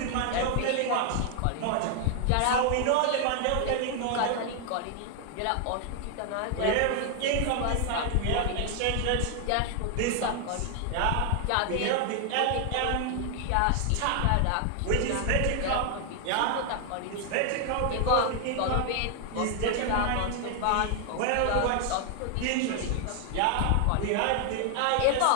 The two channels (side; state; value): both; different; correlation 0.00